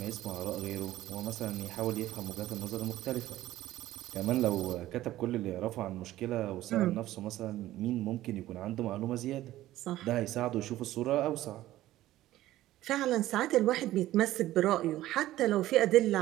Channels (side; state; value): left; quieter; 15.0 dB